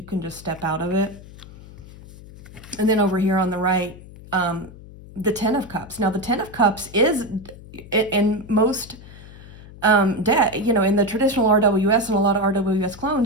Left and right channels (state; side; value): noise; left; hum, 18 dB below the sound